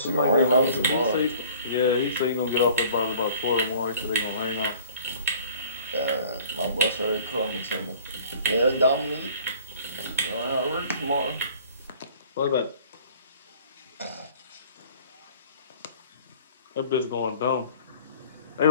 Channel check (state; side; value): inverted; both; correlation -0.50